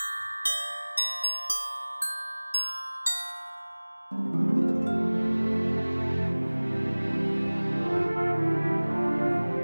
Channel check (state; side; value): inverted; both; correlation -1.00